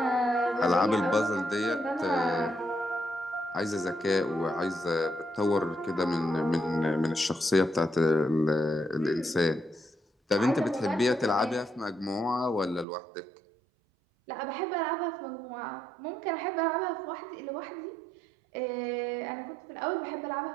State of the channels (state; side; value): drops out; left; at 12.9 s